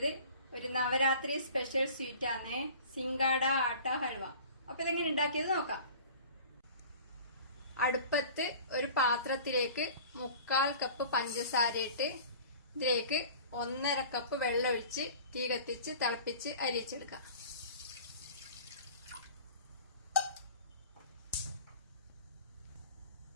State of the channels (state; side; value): inverted; both; correlation -0.43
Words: ഒരു നവരാത്രി സ്പെഷ്യൽ സ്വീറ്റ് ആണ്, സിംഗാട ആട്ട ഹൽവ. അപ്പൊ ഇതെങ്ങനെ ഉണ്ടാക്കിയത് നോക്കാം. അടുപ്പത്ത് ഒരു പാത്രത്തിലേക്ക് 3/4 കപ്പ് പഞ്ചസാര ഇട്ട് ഇതിലേക്ക് 1.5 കപ്പ് വെള്ളം ഒഴിച്ച് തീ കത്തിച്ച് തിളപ്പിച്ച് അരിച്ചെടുക്കാം.